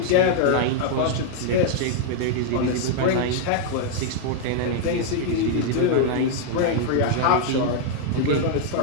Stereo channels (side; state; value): both; different; correlation 0.00